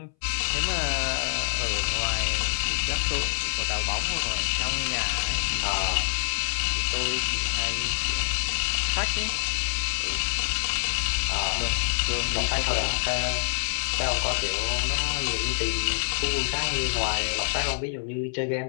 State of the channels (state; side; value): silent; right; 61 dB below the other